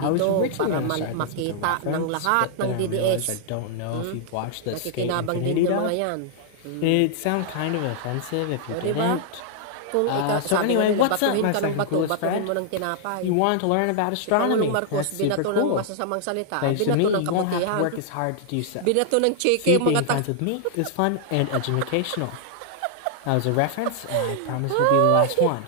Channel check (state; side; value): different; both; correlation -0.01